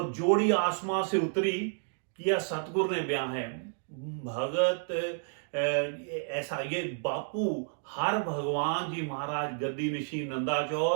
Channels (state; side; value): silent; left; digital silence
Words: जोड़ी आसमां से उतरी किया सतगुरु ने ब्याह है भगत। ऐसा ये बापू हर भगवान जी महाराज गद्दी निशी